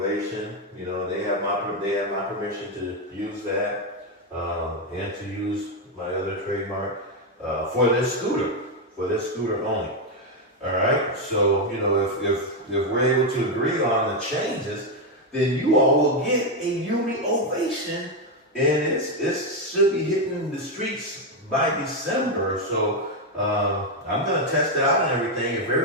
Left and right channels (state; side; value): normal; both; correlation 0.05